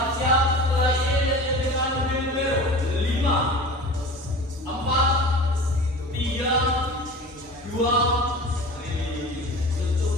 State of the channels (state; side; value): normal; both; correlation 0.37